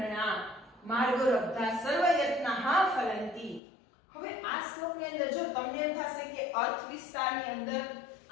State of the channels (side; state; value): right; drops out; at 3.6 s